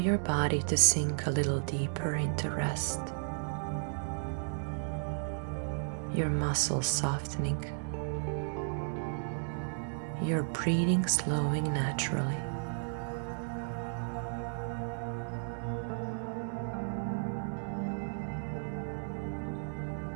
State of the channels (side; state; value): left; silent; 55 dB below the other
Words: body to sink a little deeper into rest. Your muscles softening. Your breathing slowing naturally.